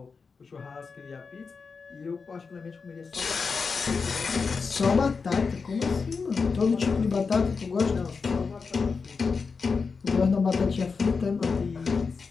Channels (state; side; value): quieter; right; 5.0 dB